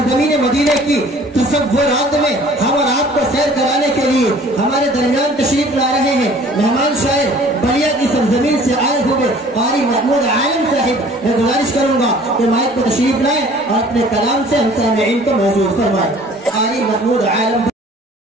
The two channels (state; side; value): normal; both; correlation 0.51